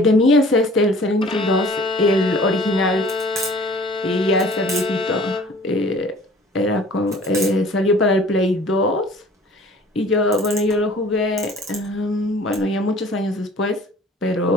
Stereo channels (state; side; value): normal; both; correlation 0.49